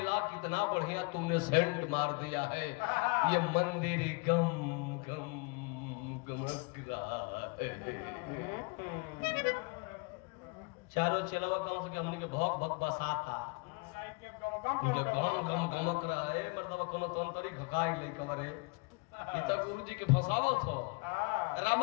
कितना बढ़िया तुमने सेंट मार दिया है ये मंदिर गम गम गमक रहा है चारों चेलावा कम से हमने के भौक भौक बसाता मुझे गम गम गमक रहा है मतलब कोनो तंतरी घकाई ले कवरे इतना गुरुजी के फसावत हो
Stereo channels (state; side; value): quieter; right; 30.1 dB